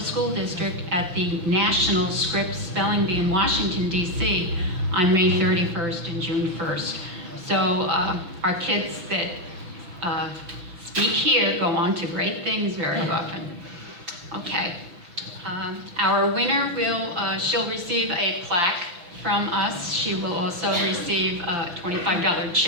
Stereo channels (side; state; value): left; late; 6.2 ms